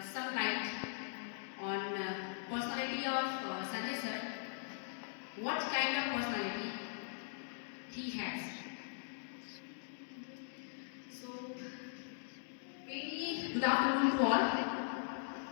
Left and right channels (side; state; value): right; silent; digital silence